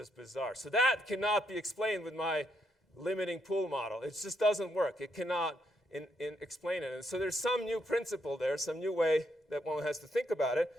bizarre. So that cannot be explained with my limiting pool model. It just doesn't work. It cannot explain it. And so there's some new principle there, some new way that one has to think about it.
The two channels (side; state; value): both; normal; correlation 0.77